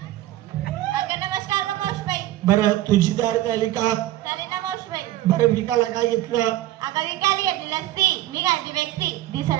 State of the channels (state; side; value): quieter; left; 14.9 dB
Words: नमस्कार ग मावशीबाई बरं तुझी तयारी झाली का चालेल ना मावशीबाई बरं विकायला काय घेतलं अगं विकायला घेतलेली असती मी घालते वेक्सी